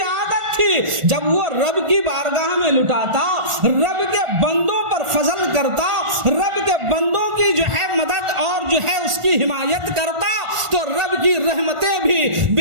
عادت تھی۔ جب وہ رب کی بارگاہ میں لٹاتا، رب کے بندوں پر فضل کرتا، رب کے بندوں کی جو ہے مدد اور جو ہے اس کی حمایت کرتا، تو رب کی رحمتیں بھی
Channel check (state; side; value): late; left; 1.5 ms